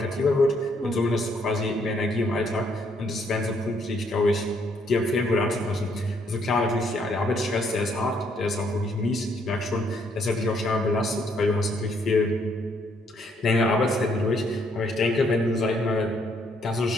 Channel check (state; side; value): normal; both; correlation 0.70